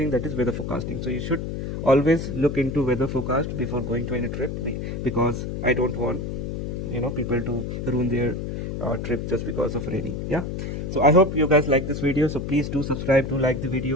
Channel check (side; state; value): left; noise; hum, 4 dB below the sound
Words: that is weather forecasting. So you should always look into weather forecast before going to any trip, because I don't want people to ruin their trip just because of raining. Yeah, so I hope you guys like this video. So please do subscribe, do like the